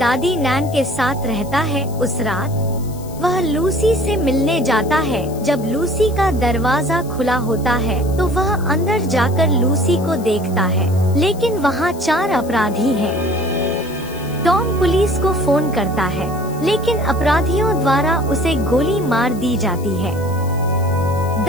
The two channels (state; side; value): noise; left; hiss, 20 dB below the sound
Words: नैन के साथ रहता है। उस रात वह लूसी से मिलने जाता है। जब लूसी का दरवाजा खुला होता है तो वह अंदर जाकर लूसी को देखता है, लेकिन वहाँ 4 अपराधी हैं। टॉम पुलिस को फोन करता है, लेकिन अपराधियों द्वारा उसे गोली मार दी जाती है।